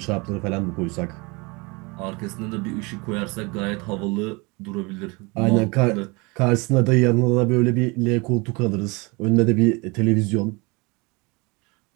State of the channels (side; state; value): left; quieter; 27.3 dB